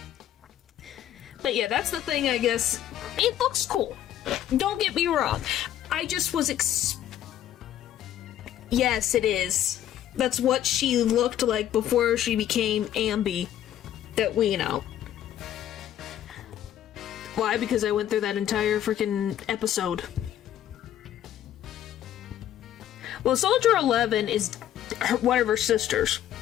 But yeah, that's the thing, I guess. It looks cool. Don't get me wrong. I just was Yes, it is. That's what she looked like before she became Ambi. That we know. Why? Because I went through that entire freaking episode. Well, Soldier 11 is one of her sisters.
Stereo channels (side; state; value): right; quieter; 11.4 dB